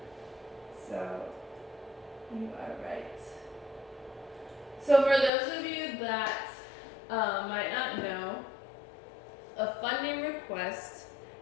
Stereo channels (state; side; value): drops out; right; at 5.3 s